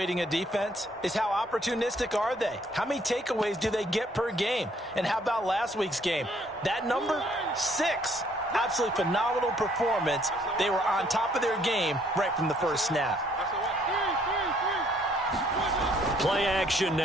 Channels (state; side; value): normal; both; correlation 0.64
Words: a defense is how opportunistic are they? How many takeaways do they get per game? And how about last week's game? That number, 6. Absolutely phenomenal performance. They were on top of their game right from the first snap. Play action